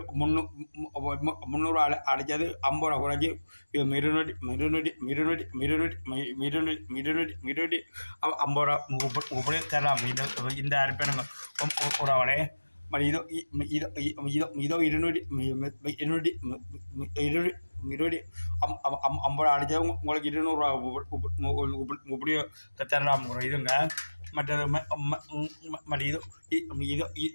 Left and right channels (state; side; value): inverted; both; correlation -1.00